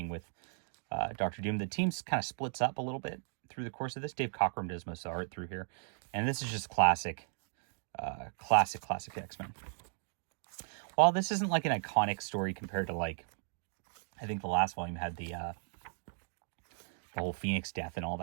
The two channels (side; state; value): left; silent; digital silence